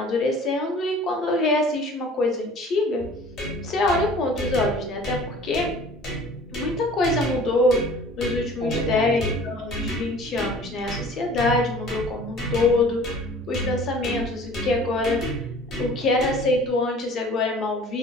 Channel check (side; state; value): both; normal; correlation 0.47